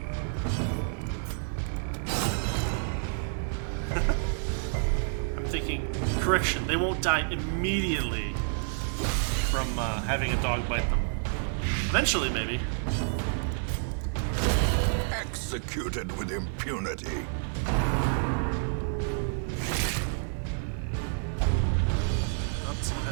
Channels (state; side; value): silent; left; digital silence